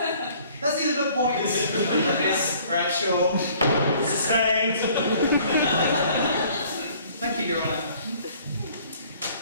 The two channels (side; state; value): both; inverted; correlation -0.56